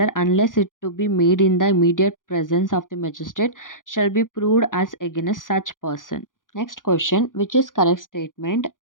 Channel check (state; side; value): late; right; 0.89 ms